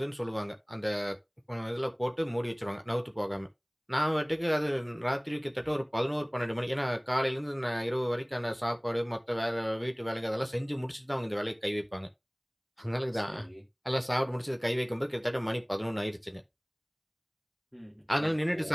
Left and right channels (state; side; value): identical; both; correlation 1.00